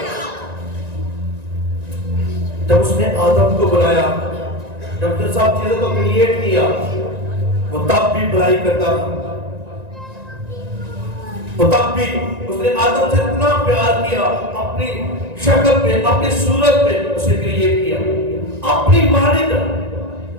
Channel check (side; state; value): left; late; 1.9 ms